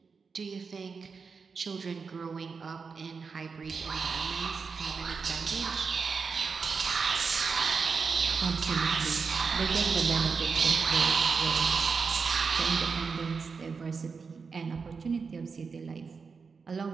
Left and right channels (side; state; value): left; quieter; 5.2 dB